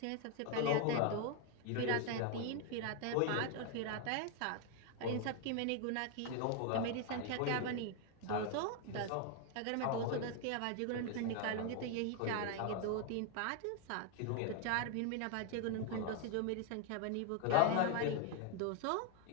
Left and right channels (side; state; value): both; different; correlation 0.01